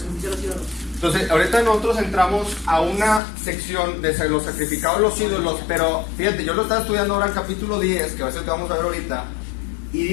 Entonces, ahorita nosotros entramos a una sección de los sacrificados los ídolos, pero fíjate, yo lo estaba estudiando ahora en capítulo 10, que va a ser el que vamos a ver ahorita, y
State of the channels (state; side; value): drops out; right; at 3.2 s